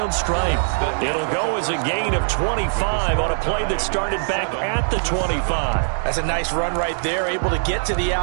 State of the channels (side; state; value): left; silent; digital silence